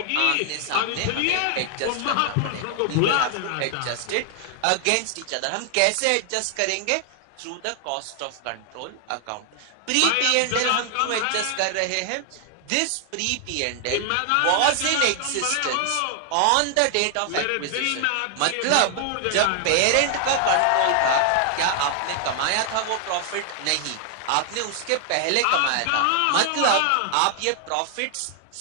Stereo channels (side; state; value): both; different; correlation 0.00